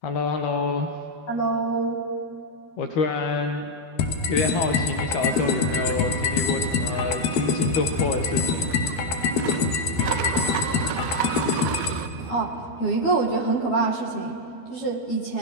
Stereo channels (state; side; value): late; right; 12 ms